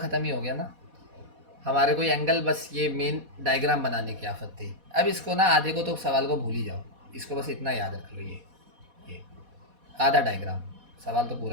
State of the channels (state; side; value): late; left; 4.1 ms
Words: ही हो गया ना। हमारे को एंगल, बस ये मेन डायग्राम बनाने की आफत थी। अब इसको ना, आधे को तो सवाल को भूल ही जाओ, इसको बस इतना याद रख लो, ये आधा डायग्राम, सवाल तो